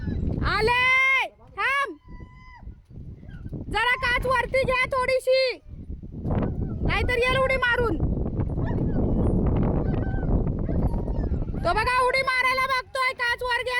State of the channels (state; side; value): identical; both; correlation 1.00